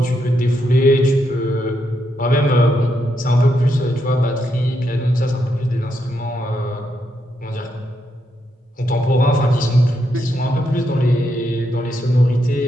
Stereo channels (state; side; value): normal; both; correlation 0.80